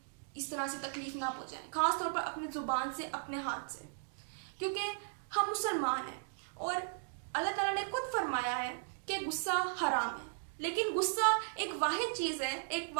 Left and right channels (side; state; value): left; silent; digital silence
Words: इस तरह से तकलीफ ना पहुंचाएं, खासतौर पर अपने जुबान से, अपने हाथ से, क्योंकि हम मुसलमान हैं और अल्लाह ताला ने खुद फरमाया है कि गुस्सा हराम है। लेकिन गुस्सा एक वाहिद चीज है, एक